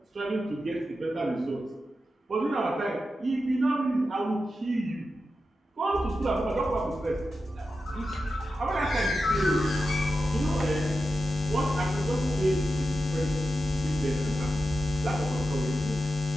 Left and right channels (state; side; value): normal; both; correlation 0.90